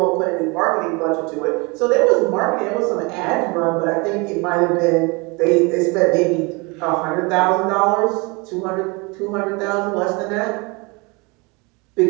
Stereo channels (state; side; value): quieter; left; 28.0 dB